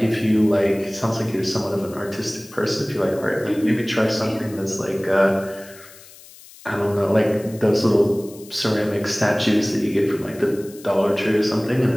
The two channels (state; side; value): noise; left; hiss, 21 dB below the sound